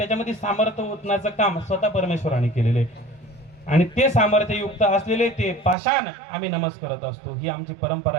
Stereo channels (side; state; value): left; drops out; at 5.8 s